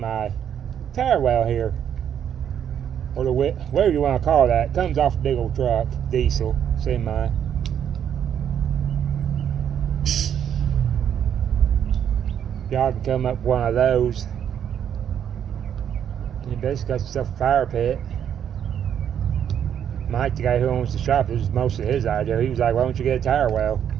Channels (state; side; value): quieter; left; 9.0 dB